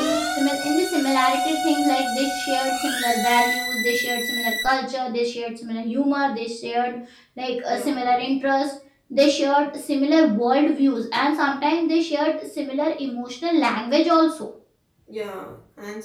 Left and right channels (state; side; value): identical; both; correlation 1.00